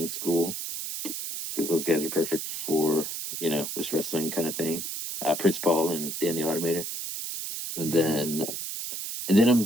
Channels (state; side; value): noise; right; hiss, 5 dB below the sound